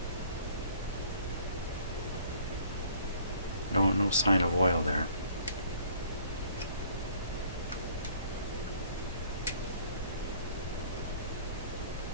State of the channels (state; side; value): inverted; both; correlation -0.56